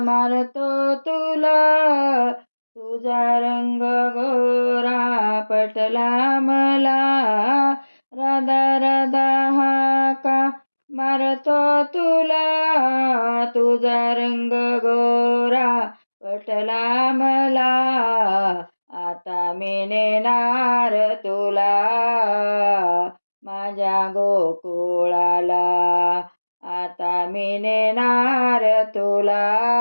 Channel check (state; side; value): inverted; both; correlation -1.00